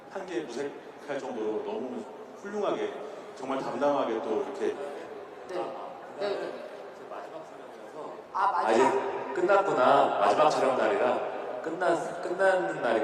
한 게 무색할 정도로 너무 훌륭하게 정말 담담하게 또 이렇게 마지막 촬영이라서 맞아. 이제 끝났구나. 마지막 촬영 날이라 끝나는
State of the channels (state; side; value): identical; both; correlation 1.00